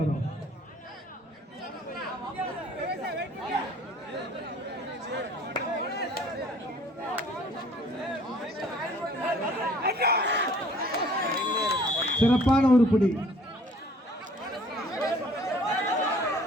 சிறப்பான ஒரு புடி.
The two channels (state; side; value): normal; both; correlation 0.55